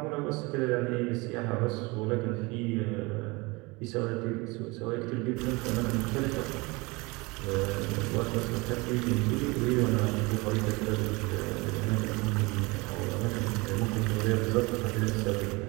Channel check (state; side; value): quieter; left; 25.2 dB